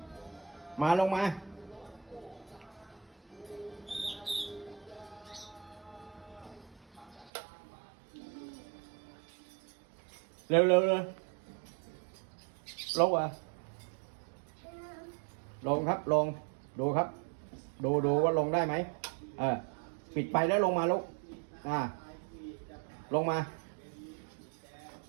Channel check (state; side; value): drops out; left; at 7.3 s